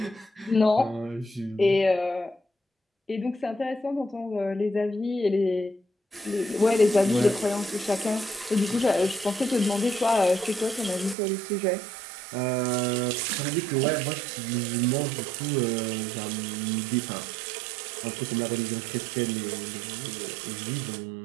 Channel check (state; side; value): drops out; left; at 11.2 s